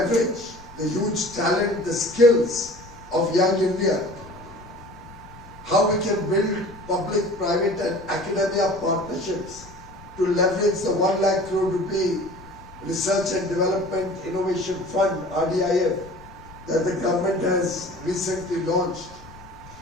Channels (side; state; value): left; noise; rumble, 20 dB below the sound